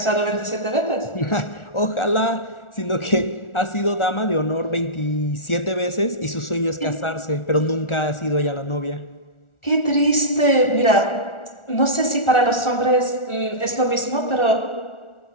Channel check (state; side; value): late; right; 1.4 ms